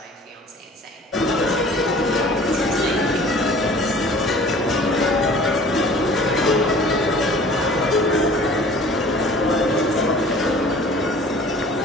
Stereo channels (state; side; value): normal; both; correlation 0.48